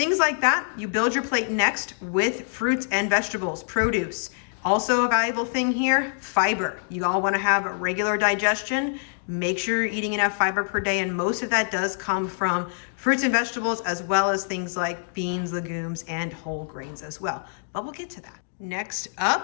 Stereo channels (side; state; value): right; silent; digital silence